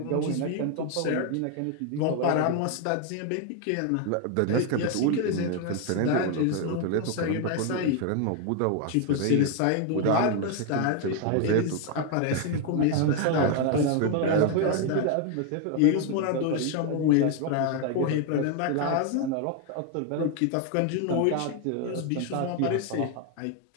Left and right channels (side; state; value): both; different; correlation 0.01